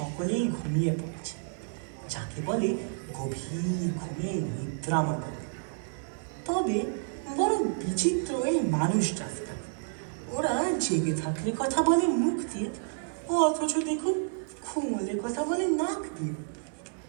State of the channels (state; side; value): silent; left; 58 dB below the other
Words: ঘুমিয়ে পড়েছে, যাকে বলে গভীর ঘুমে নিদ্রামগ্ন। তবে বড় বিচিত্র এই মানুষ জাতটা। ওরা জেগে থাকলে কথা বলে মুখ দিয়ে, অথচ দেখুন ঘুমলে কথা বলে নাক দিয়ে।